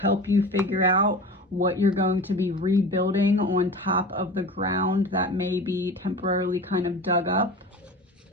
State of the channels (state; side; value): normal; both; correlation 0.34